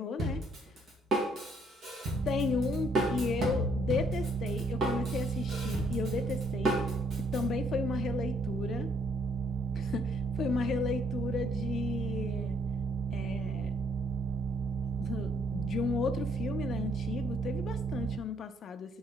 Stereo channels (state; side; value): normal; both; correlation 0.68